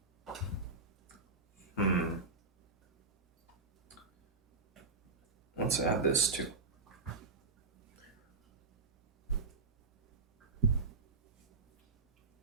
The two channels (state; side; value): quieter; left; 4.0 dB